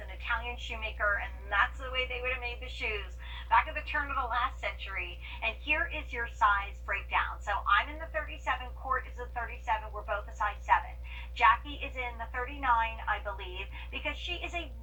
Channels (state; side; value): identical; both; correlation 1.00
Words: Italian shoemaker, and that's the way they would have made the shoes back at the turn of the last century. And here is your size breakdown. So I'm in the 37. Court is a 37. We're both a size 7. Jackie is in the 39, I believe, because she is